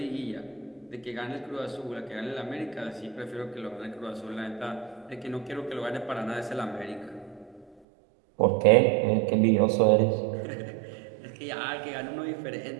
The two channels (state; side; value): drops out; left; at 7.8 s